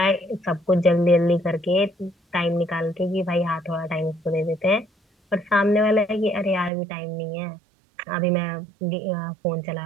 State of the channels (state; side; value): drops out; left; at 6.7 s